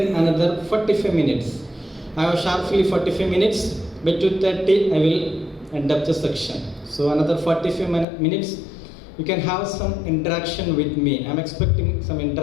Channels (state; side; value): drops out; right; at 8.1 s